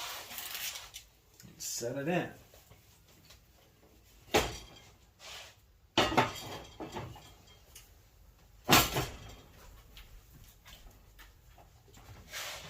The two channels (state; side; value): identical; both; correlation 1.00